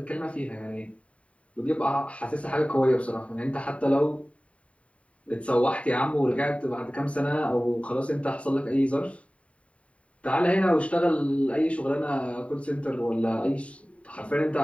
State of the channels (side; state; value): right; late; 0.064 ms